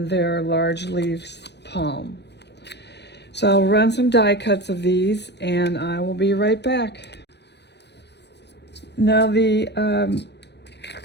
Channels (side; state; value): right; late; 0.50 ms